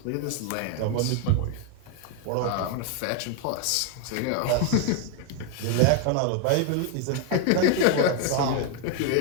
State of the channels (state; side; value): different; both; correlation 0.01